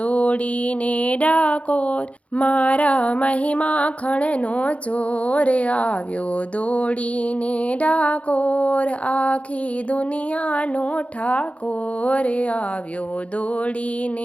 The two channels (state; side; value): late; right; 0.064 ms